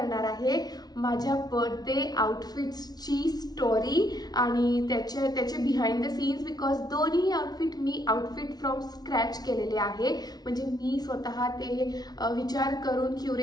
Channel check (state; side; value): late; right; 0.19 ms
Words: आहे माझ्या बर्थडे आउटफिट्सची स्टोरी आणि त्याचे बिहाइंड द सीन्स, बिकॉज दोन्ही outfit me outfit from scratch केलेले आहे, म्हणजे मी स्वतः ते विचार करून